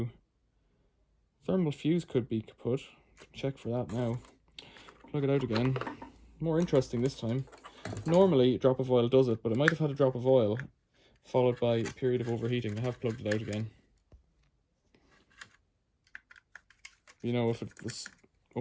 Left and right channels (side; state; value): both; identical; correlation 1.00